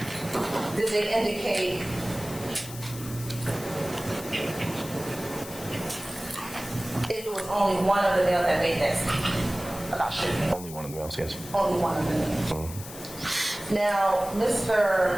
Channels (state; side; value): noise; left; hiss, 13 dB below the sound